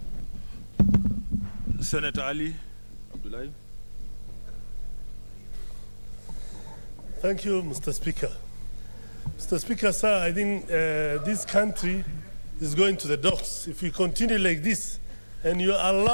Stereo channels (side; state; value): both; inverted; correlation -1.00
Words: Senator Ali Abdullahi. Thank you, Mr. Speaker. Mr. Speaker, sir, I think this country is going to the dogs. If we continue like this and you